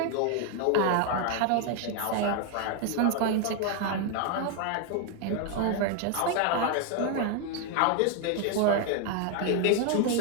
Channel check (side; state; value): both; different; correlation 0.00